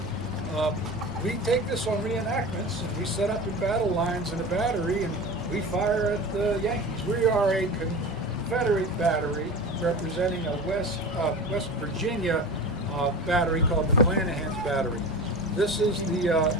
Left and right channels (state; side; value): normal; both; correlation 0.32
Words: we take this on reenactments, and we set up in battle lines in a battery, and we fire at the Yankees. We are a Confederate battery representing a West Virginia battery called the McClanahan's battery. This is the